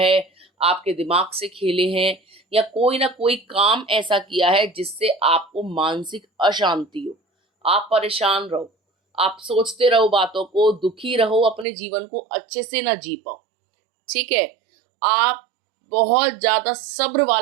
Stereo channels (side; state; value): left; drops out; at 11.7 s